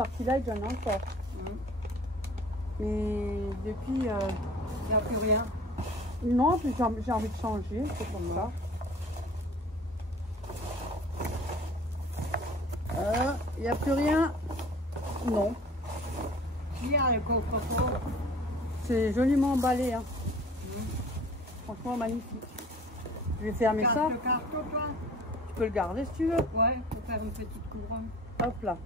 Light, j'en ai encore. Mais depuis... Il n'y a plus rien. Non, puis j'ai envie de changer. C'est comme ça. Il n'y a plus rien. Non. Il y a le coffre-fort. C'est joliment emballé. Hein. Franchement, magnifique. Je vais fermer ça. Le carton, toi? Tu peux le garder si tu veux. Ouais, pour faire une petite couronne. Hop là.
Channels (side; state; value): both; normal; correlation 0.46